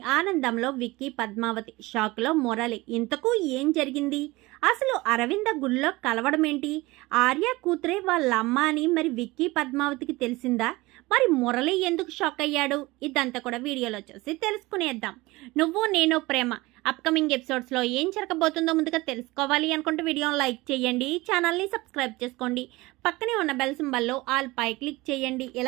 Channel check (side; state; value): left; quieter; 21.1 dB